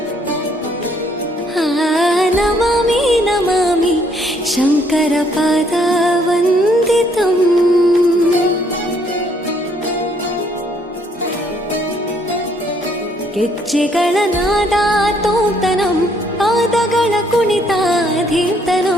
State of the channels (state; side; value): normal; both; correlation 0.67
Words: नमामि नमामि शङ्करपादवन्दितम् ಗೆಜ್ಜೆಗಳ ನಾದ ತೋಂತನಂ ಪಾದಗಳ